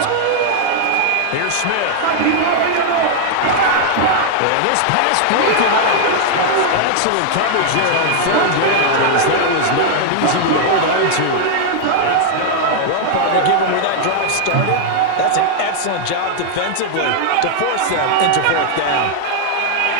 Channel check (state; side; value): different; both; correlation -0.01